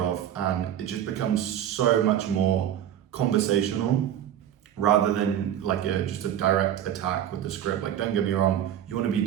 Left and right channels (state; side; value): quieter; left; 10.6 dB